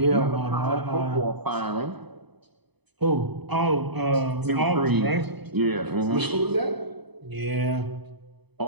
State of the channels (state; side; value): late; left; 0.99 ms